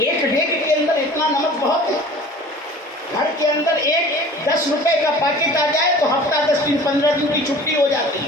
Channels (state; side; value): normal; both; correlation 0.44